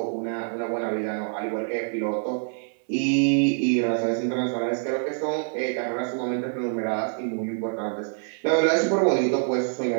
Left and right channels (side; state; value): left; silent; digital silence